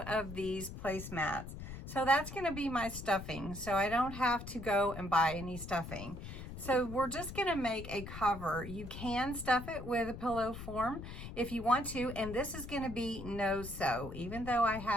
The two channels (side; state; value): left; noise; rumble, 10 dB below the sound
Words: of these placemats. So that's going to be my stuffing. So I don't have to go and buy any stuffing. So we're just going to make a cover. You can stuff it with a pillow form if you want to. And this is going to be no sew. Even though I